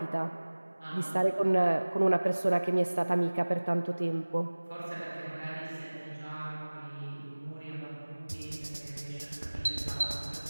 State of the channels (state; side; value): inverted; both; correlation -1.00